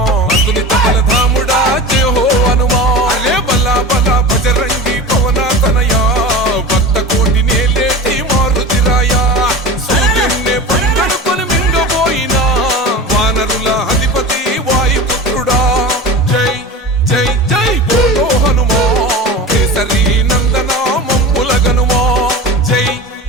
అతులిత బలధాముడా జయ హో హనుమా అరే బలా బలా బజరంగి పవన తనయా భక్త కోటి నేలేటి మారుతిరాయా సూర్యున్నే పంగడుకొని మింగబోయినా వానరుల అధిపతి వాయుపుత్రుడా జై జై జై బోలో హనుమా కేసరి నందన మమ్ముల గనుమా జై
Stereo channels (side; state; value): both; normal; correlation 0.31